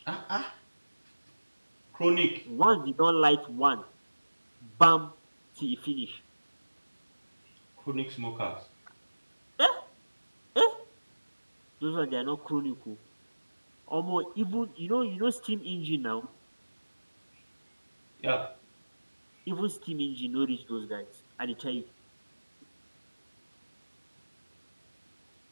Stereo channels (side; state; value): both; inverted; correlation -1.00